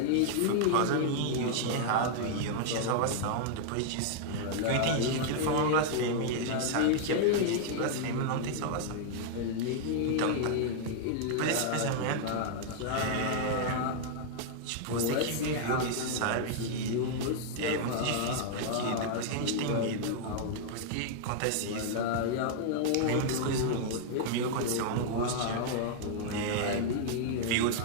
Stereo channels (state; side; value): different; both; correlation -0.01